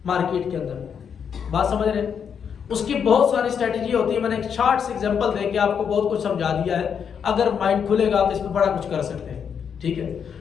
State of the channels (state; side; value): quieter; right; 7.3 dB